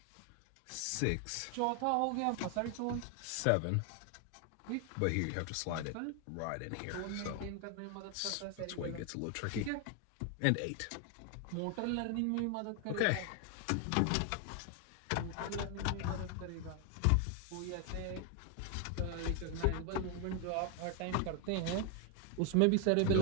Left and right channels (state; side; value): different; both; correlation 0.01